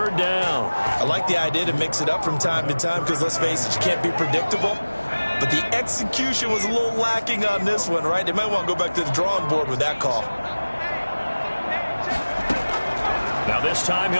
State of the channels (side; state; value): both; inverted; correlation -1.00